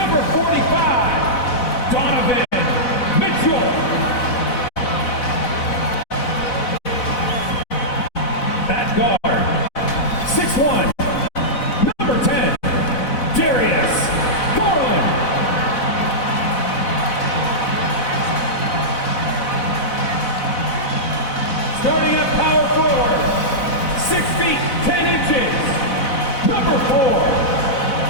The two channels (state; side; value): late; right; 4.0 ms